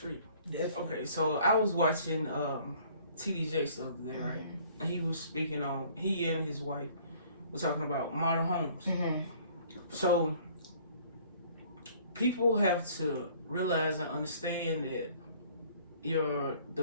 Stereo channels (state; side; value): inverted; both; correlation -0.55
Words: Definitely. Okay, so I was watching TD Jakes the other day, right? And he was speaking on, he and his wife were talking about modern homes. Mm-hmm. So people have to realize and understand that